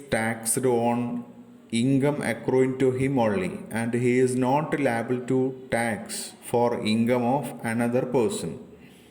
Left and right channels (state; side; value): identical; both; correlation 1.00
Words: taxed on income accruing to him only and he is not liable to tax for income of another person.